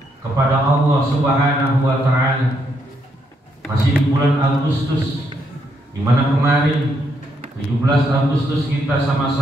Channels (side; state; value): both; normal; correlation 0.76